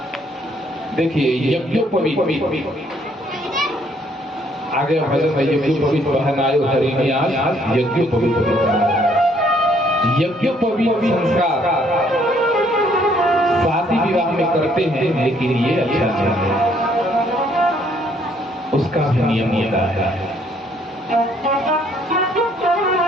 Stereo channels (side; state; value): both; normal; correlation 0.66